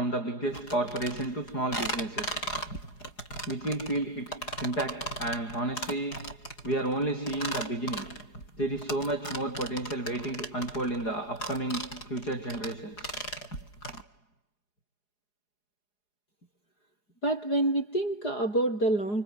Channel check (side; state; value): right; late; 4.8 ms